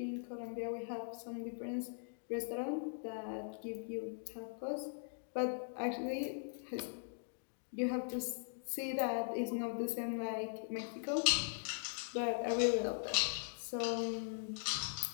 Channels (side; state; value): right; silent; digital silence